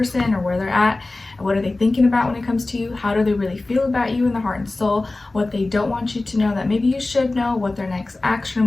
or where they're at. What are they thinking about when it comes to you? How do they really feel about you in the heart and soul? What they don't want you to know that maybe you should know, what their next action or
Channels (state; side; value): quieter; right; 3.1 dB